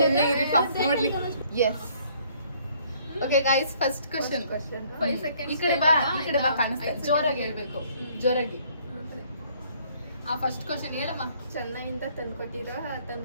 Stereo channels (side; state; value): both; inverted; correlation -0.62